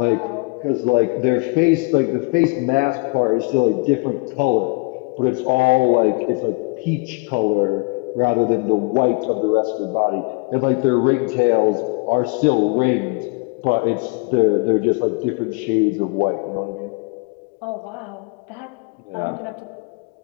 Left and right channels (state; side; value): quieter; right; 30.4 dB